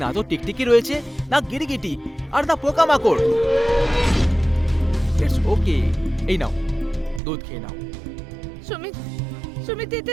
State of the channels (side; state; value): left; drops out; at 7.2 s